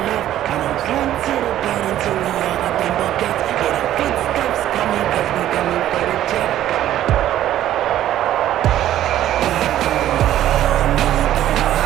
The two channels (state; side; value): quieter; left; 12.5 dB